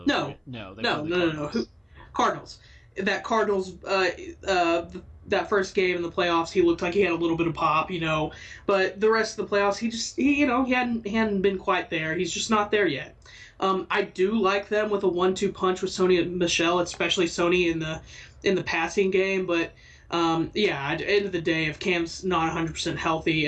Cardinals. That Cardinals, that first game in the playoffs, he looked like he had a little bit of pop, But the rest of the playoffs, he hadn't been quite there. He's just not there yet. I do like them with a 1-2 punch with Sony and Michel, especially Sony in the passing game, but. At the end of the day, if Cam's not 100% healthy,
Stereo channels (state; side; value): identical; both; correlation 1.00